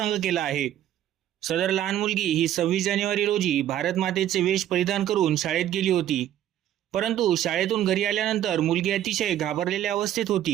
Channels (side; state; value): left; quieter; 11.7 dB